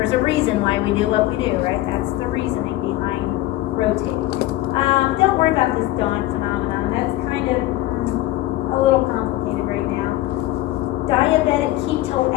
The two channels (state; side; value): quieter; right; 16.2 dB